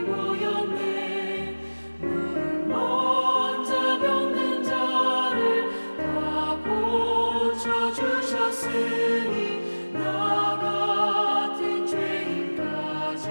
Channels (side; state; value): both; inverted; correlation -1.00